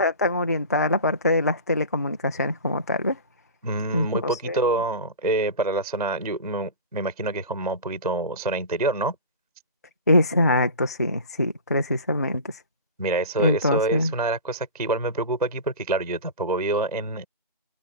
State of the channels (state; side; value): inverted; both; correlation -0.32